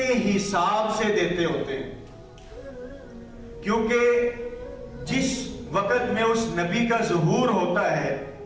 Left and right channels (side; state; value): both; identical; correlation 1.00